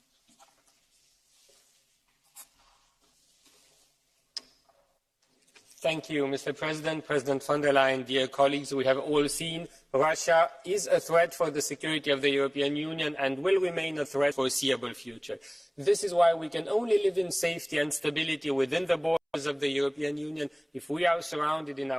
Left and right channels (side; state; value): both; identical; correlation 1.00